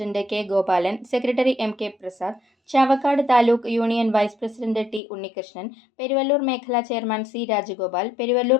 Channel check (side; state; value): right; drops out; at 5.0 s